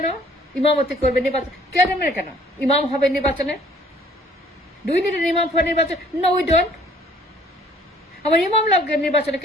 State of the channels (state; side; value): normal; both; correlation 0.57